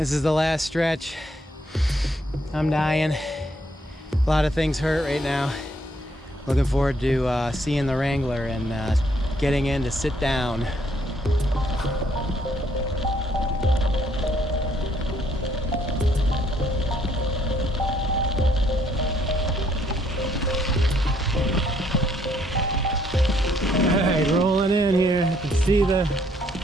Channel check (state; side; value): normal; both; correlation 0.69